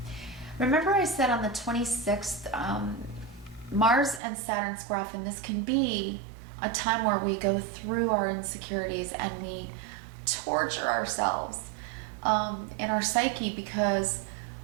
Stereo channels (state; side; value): drops out; left; at 4.2 s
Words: Remember I said on the 26th, Mars and Saturn square off, and this can be a time where we go through our insecurities and we torture ourselves in our psyche because